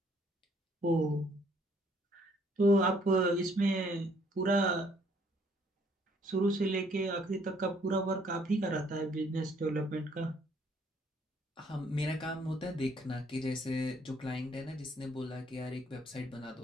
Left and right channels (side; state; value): both; normal; correlation 0.64